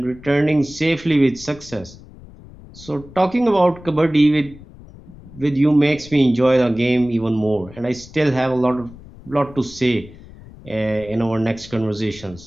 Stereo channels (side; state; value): left; noise; rumble, 19 dB below the sound